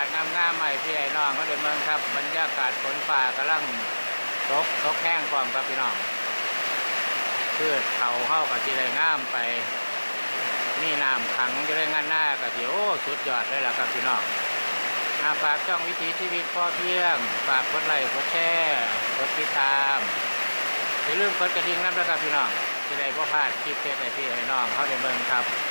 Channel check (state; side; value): inverted; both; correlation -1.00